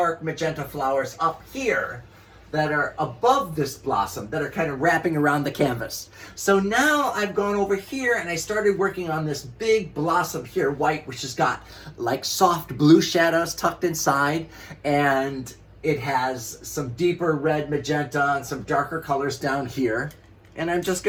magenta flowers up here that are above this blossom, that are kind of wrapping around the canvas. So now I've gone over here and I started working on this big blossom here, white, which has got like soft blue shadows tucked inside, and it has some deeper red magenta and some darker colors down here. And I'm just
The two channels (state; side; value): identical; both; correlation 1.00